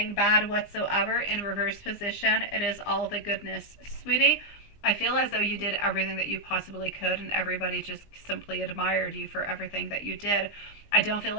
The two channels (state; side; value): late; right; 20 ms